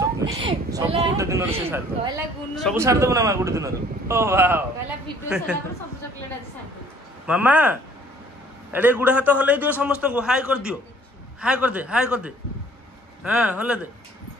ସବୁ ଗୋଟେ ଦିନରେ ସେ ସାର ଦବ କହିଲା ଗୁନୁ ସବୁ ସାର ଦବ ନା ମା ଗୋଟେ ଦିନରେ ଓ ୱାଓ କହିଲା ଭିଡିଓ ସଲା ପରେ ସବୁ ଚॉकलेट ଆଜି ସାର ଦो मामा एडे गुड़ा हाथ हल्ले दियो समस्त को हाय कर दे हाँ हल्ले दे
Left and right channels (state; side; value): normal; both; correlation 0.56